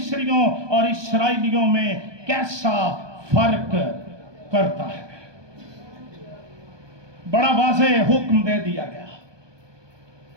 और इस्राएलियों में कैसा फर्क करता है। बड़ा वाज़ेह हुक्म दे दिया गया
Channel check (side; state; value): left; late; 1.2 ms